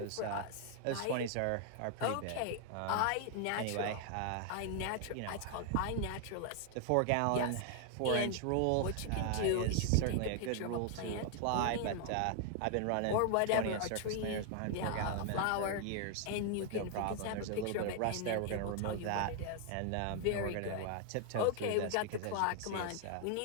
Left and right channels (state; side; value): different; both; correlation 0.00